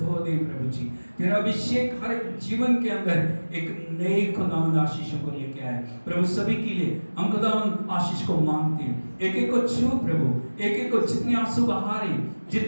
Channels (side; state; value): both; inverted; correlation -1.00